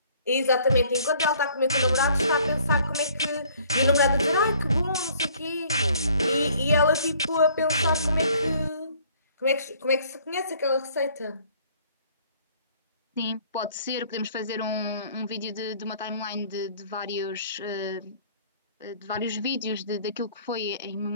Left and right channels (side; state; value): both; inverted; correlation -0.58